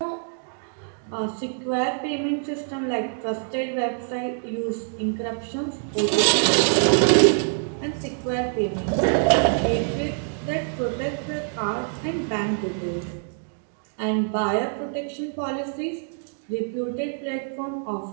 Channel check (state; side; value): silent; left; 62 dB below the other